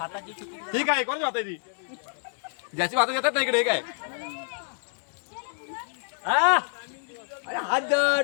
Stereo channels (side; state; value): right; silent; 60 dB below the other